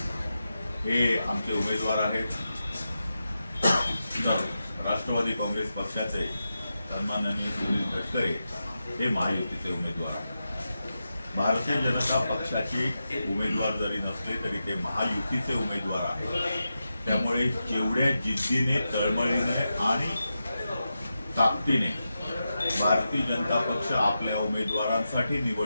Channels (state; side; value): inverted; both; correlation -0.89